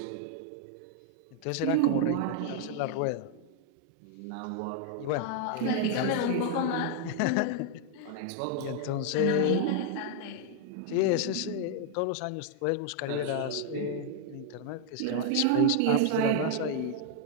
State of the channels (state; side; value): different; both; correlation 0.00